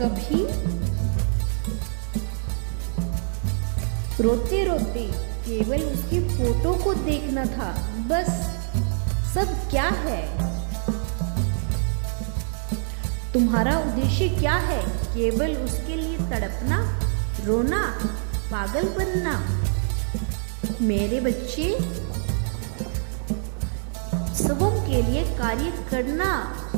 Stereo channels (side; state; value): left; silent; digital silence